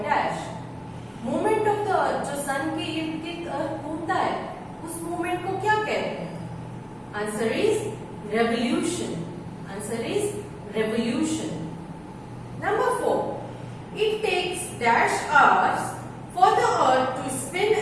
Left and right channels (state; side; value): identical; both; correlation 1.00